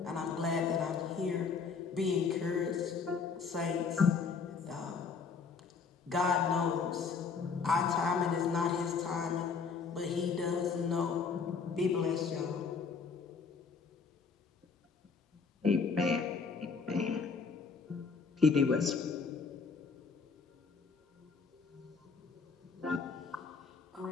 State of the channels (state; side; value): quieter; right; 5.2 dB